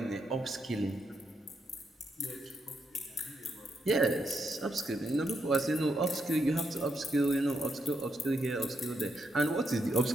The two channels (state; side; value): normal; both; correlation 0.80